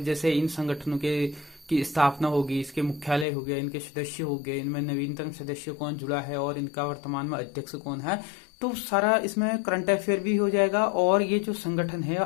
जैसे इन संगठनों के की स्थापना होगी, इसके मुख्यालय हो गए, इनके सदस्य हो गए, इनमें नवीनतम सदस्य कौन जुड़ा है और इनका वर्तमान में अध्यक्ष कौन है, तो सारा इसमें करंट अफेयर भी हो जाएगा। और ये जो संगठन है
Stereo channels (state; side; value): drops out; right; at 3.2 s